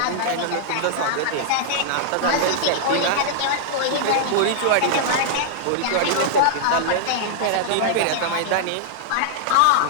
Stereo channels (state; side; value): different; both; correlation -0.01